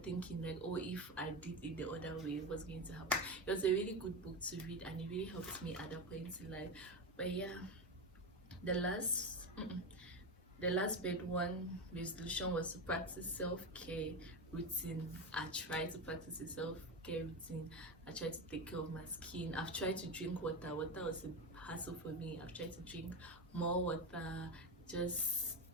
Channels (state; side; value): normal; both; correlation 0.17